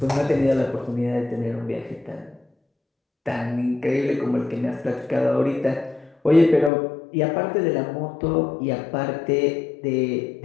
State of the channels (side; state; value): right; drops out; at 6.7 s